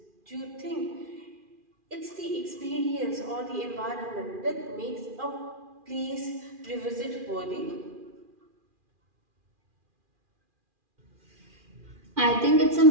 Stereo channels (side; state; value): left; late; 2.4 ms